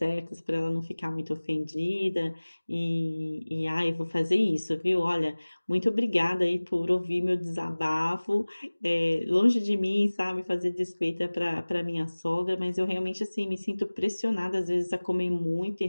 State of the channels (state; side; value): inverted; both; correlation -1.00